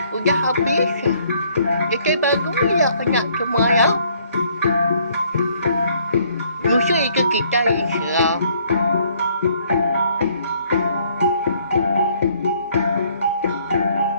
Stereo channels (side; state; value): both; inverted; correlation -0.64